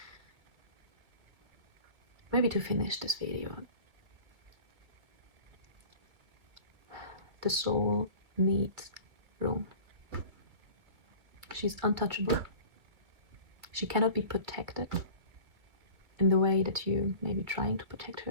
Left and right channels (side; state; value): left; late; 2.3 ms